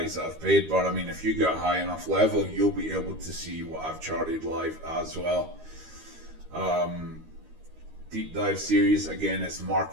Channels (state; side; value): late; left; 13 ms